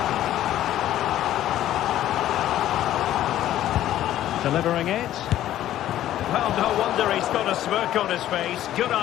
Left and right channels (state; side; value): quieter; right; 12.8 dB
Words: Delivering it. Well, no wonder he's got a smirk on his face. Good